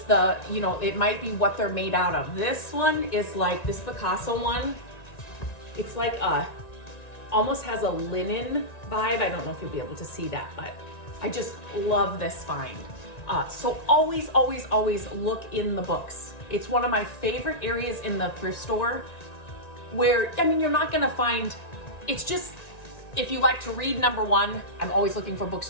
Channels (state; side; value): late; right; 1.9 ms